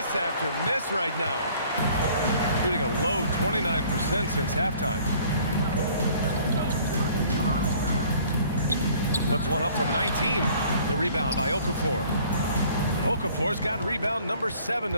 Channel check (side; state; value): both; inverted; correlation -0.55